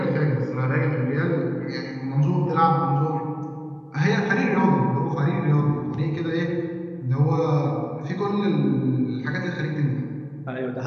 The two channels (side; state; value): both; identical; correlation 1.00